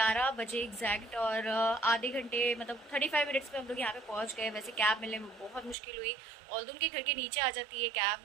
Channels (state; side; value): drops out; left; at 5.8 s